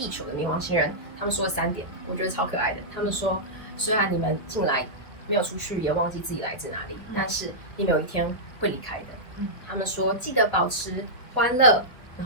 球的冥王星人，他们说了3点，我觉得超可爱的。他们说，虽然你们进来没有出去，也忘记自己来自哪里，但是你们有一天会离开的。他们说记得保持欢乐，然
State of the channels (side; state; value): right; late; 1.2 ms